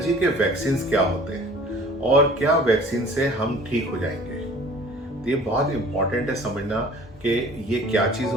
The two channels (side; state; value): both; normal; correlation 0.48